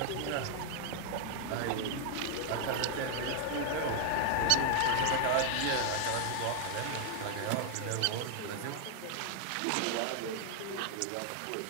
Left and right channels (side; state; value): both; different; correlation 0.00